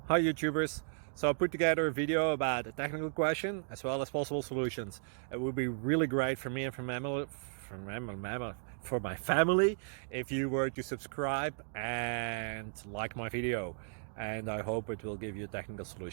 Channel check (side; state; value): left; silent; digital silence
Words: Hi YouTubers! So I put together a video about a technical question as well as possible solutions. It would be really great for me and for my family if you were to subscribe and like my video, and I hope it will give you a technical